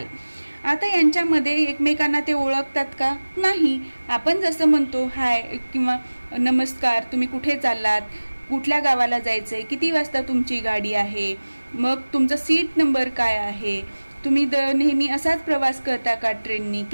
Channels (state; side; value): inverted; both; correlation -1.00